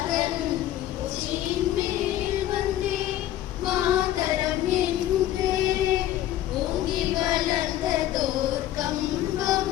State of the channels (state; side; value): quieter; right; 13.1 dB